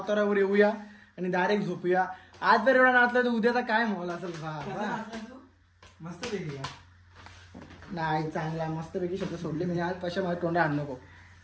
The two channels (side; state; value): both; identical; correlation 1.00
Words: येऊया आणि डायरेक्ट झोपूया आज जर एवढा नाचला तर उद्याचा काय माहोल असेल मस्त पैकी नाही चांगला मस्त पैकी शब्द सोडले म्हणजे आज पैसे माझ्या तोंडा आण नको